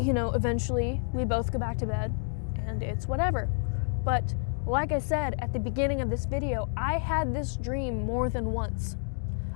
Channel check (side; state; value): right; silent; 58 dB below the other